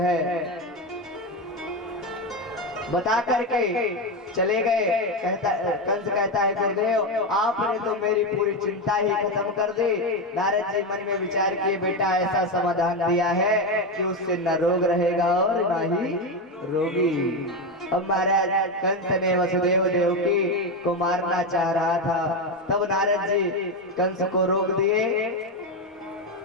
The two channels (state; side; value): normal; both; correlation 0.12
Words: बता करके चले गए। कंस कहता है गुरुदेव आपने तो मेरी पूरी चिंता ही खत्म कर दी। नारद जी मन में विचार किए बेटा ऐसा समाधान दिया है कि उससे न रोग रहेगा और न ही रोगी। अब महाराज कंस ने वसुदेव देवकी को मारना चाह रहा था, तब नारद जी कंस को रोक दिए